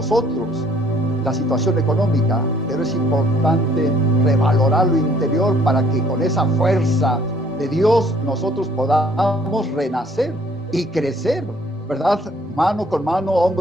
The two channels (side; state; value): both; normal; correlation 0.60